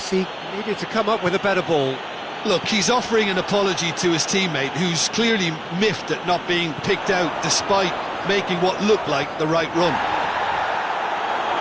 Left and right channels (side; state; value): both; identical; correlation 1.00